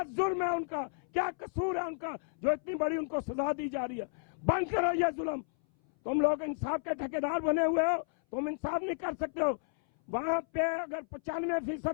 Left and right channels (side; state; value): right; silent; 56 dB below the other